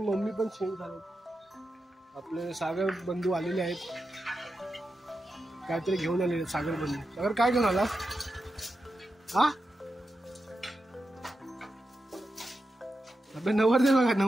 मम्मी पण शेण सारवते. आपले सागर बंधू आलेले आहेत. काहीतरी घेऊन आलेले सागर बंधू. सागर काय घेऊन आला हा. आपले नवरदेव बघा.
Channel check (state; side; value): normal; both; correlation 0.89